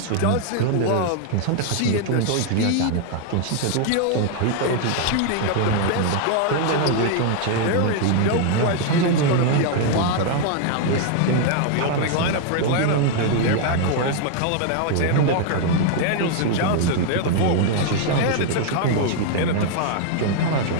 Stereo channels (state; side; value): different; both; correlation 0.00